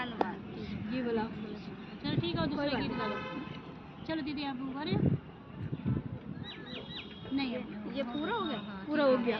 ये बोला चलो ठीक है, दूसरा गीत गा लो। चलो दीदी आप गा रहे हो? नहीं ये पूरा हो गया, पूरा हो गया।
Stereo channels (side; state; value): both; identical; correlation 1.00